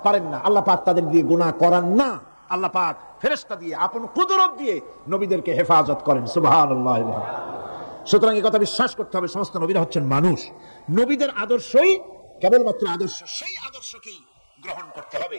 পারেন না। আল্লাহ পাক তাদের দিয়ে গুনাহ করান না। আল্লাহ পাক ফেরেশতা দিয়ে, আপন কুদরত দিয়ে নবীদেরকে হেফাজত করেন। সুবহানাল্লাহ। সুতরাং এই কথা বিশ্বাস করতে হবে, সমস্ত নবীরা হচ্ছেন মানুষ। নবীদের আদর্শই কেবলমাত্র আদর্শ, সেই আদর্শকেই গ্রহণ করতে হবে,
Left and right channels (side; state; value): both; inverted; correlation -1.00